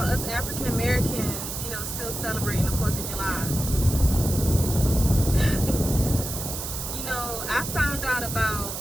us African Americans, you know, still celebrating the 4th of July? You know, I found out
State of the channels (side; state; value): right; noise; hiss, 6 dB below the sound